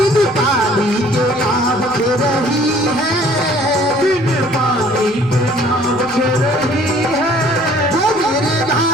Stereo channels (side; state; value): left; noise; rumble, 26 dB below the sound